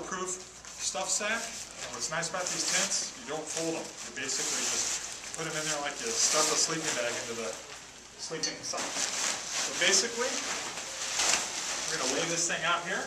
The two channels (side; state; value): both; identical; correlation 1.00